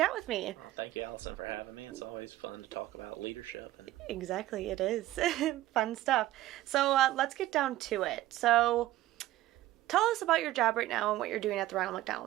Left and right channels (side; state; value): left; quieter; 15.5 dB